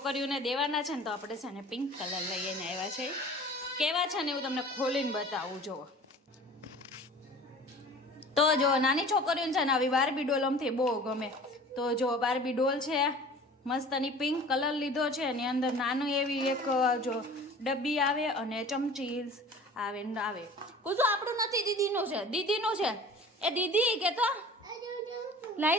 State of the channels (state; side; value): normal; both; correlation 0.43